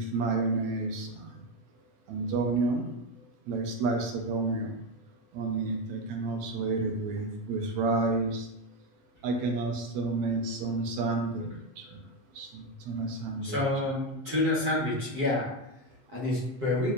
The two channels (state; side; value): late; left; 7.6 ms